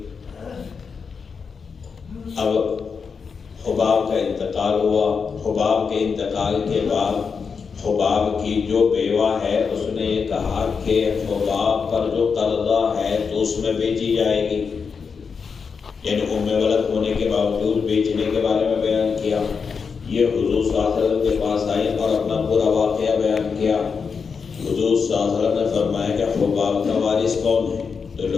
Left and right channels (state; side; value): quieter; right; 5.7 dB